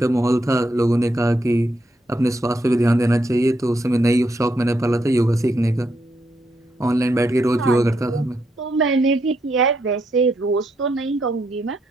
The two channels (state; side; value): normal; both; correlation 0.79